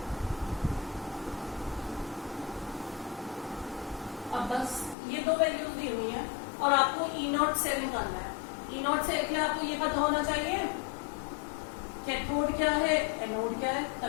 अब बस ये दो वैल्यूज दी हुई है और आपको ई नॉट सेल निकालना है। ई नॉट सेल के लिए आपको ये पता होना चाहिए कैथोड क्या है, एनोड क्या है,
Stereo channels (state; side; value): drops out; right; at 5.0 s